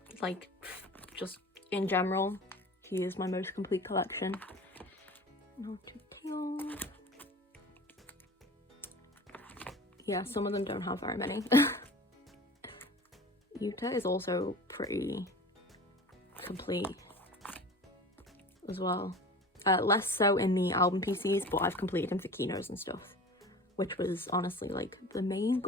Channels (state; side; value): normal; both; correlation 0.38